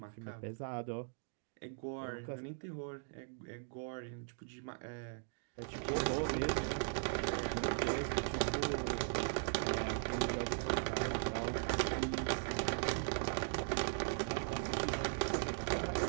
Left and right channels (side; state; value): left; silent; digital silence